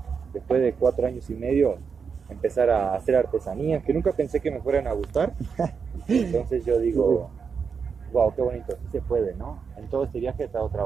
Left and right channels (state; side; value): quieter; left; 6.0 dB